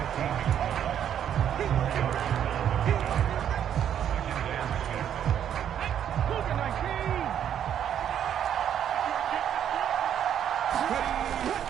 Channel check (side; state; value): left; quieter; 9.6 dB